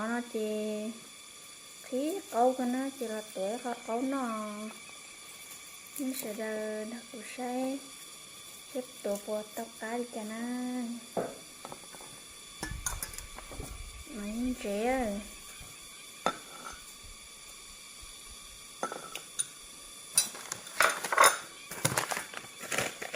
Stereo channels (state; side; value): identical; both; correlation 1.00